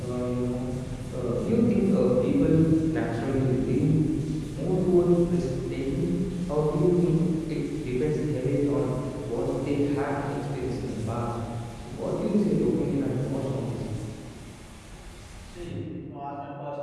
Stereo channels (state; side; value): identical; both; correlation 1.00